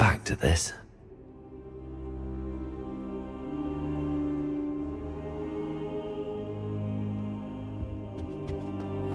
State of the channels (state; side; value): identical; both; correlation 1.00